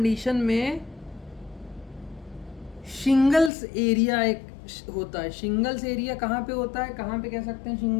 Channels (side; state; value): right; drops out; at 3.5 s